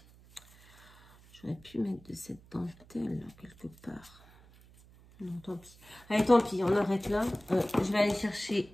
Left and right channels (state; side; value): noise; right; hum, 24 dB below the sound